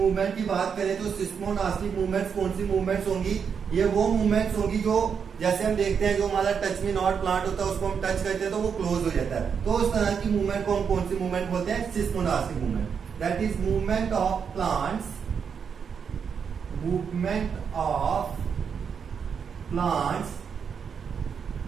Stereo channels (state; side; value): quieter; left; 6.7 dB